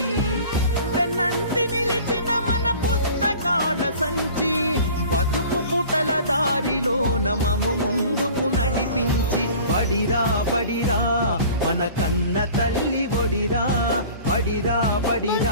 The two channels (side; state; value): both; inverted; correlation -0.44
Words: వెన్నంటి నిలిచిన మన పుస్తకాల సంచి బతుకు పుటల దారిలో నమము ముందుకు నడిపించి, పడిరా పడిరా మన కన్న తల్లి ఒడిరా, పడిరా